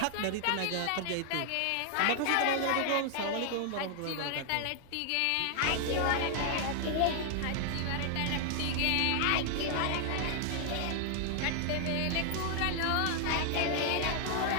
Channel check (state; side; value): different; both; correlation 0.00